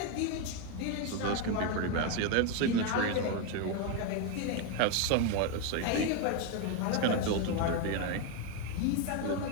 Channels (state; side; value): different; both; correlation 0.02